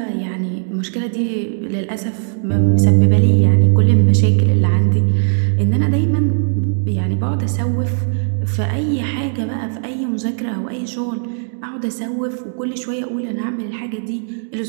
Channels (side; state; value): left; silent; digital silence